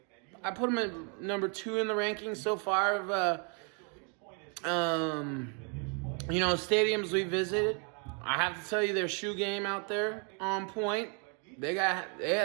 I put them at number 2 in the rankings so far of stadiums we visited. I have to tell you, their shoe game out there on point. They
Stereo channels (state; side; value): quieter; left; 38.0 dB